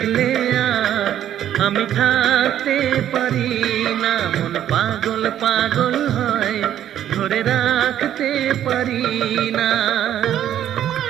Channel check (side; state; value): left; quieter; 11.1 dB